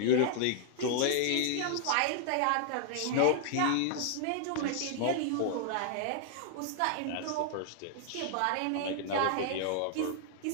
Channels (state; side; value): different; both; correlation -0.01